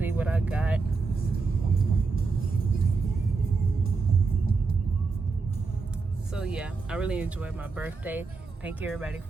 what I got. So yeah, I really enjoyed my birthday. Thank you everybody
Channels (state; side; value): quieter; left; 4.3 dB